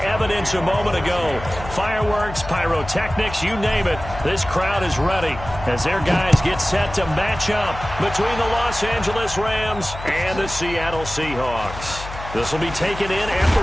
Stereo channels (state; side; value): noise; left; hum, 11 dB below the sound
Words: a moment ago. Fireworks, pyrotechnics, you name it. This crowd is ready as their guys get set to match up between the Los Angeles Rams and the Seattle Seahawks. This will be taken in at the